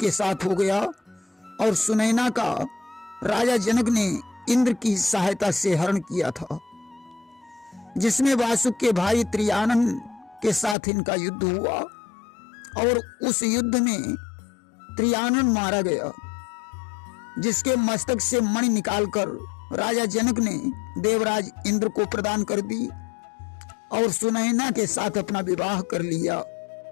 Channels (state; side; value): drops out; right; at 10.8 s